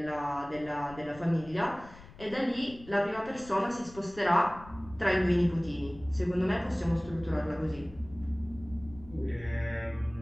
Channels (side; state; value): left; noise; rumble, 19 dB below the sound